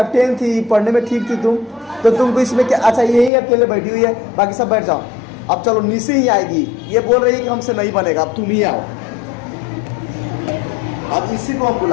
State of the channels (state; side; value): drops out; right; at 3.3 s